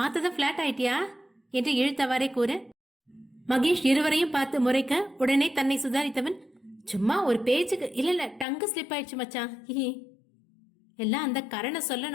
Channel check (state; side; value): drops out; right; at 8.5 s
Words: பிளாட் ஆயிட்டியா என்று இழுத்தவாறே கூற மகேஷ் இருவரையும் பார்த்து முறைக்க உடனே தன்னை சுதாரித்தவன், சும்மா ஒரு பேச்சுக்கு, இல்ல டங்கு ஸ்லிப் ஆயிடுச்சு மச்சான், எல்லாம் அந்த கரணை